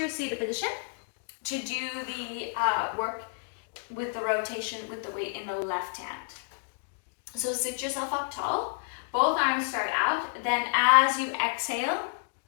your seated position to do the work with the rotation with the weight in the left hand. So sit yourself up tall. Both arms start out. Then as you exhale,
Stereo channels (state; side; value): silent; right; digital silence